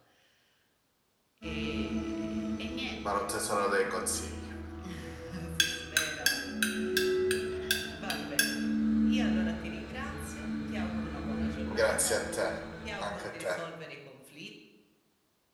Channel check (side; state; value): both; identical; correlation 1.00